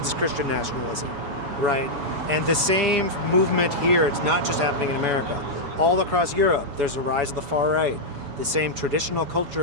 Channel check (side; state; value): left; late; 7.1 ms